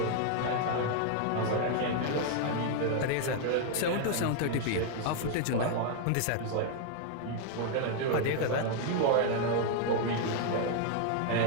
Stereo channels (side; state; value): both; different; correlation 0.00